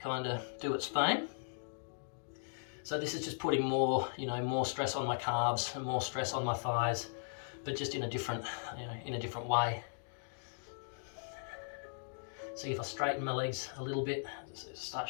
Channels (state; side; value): silent; right; digital silence